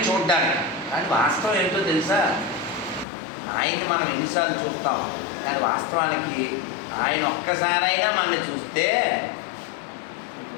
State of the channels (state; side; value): drops out; right; at 3.1 s